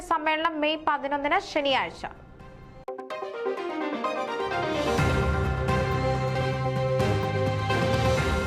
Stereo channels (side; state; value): both; identical; correlation 1.00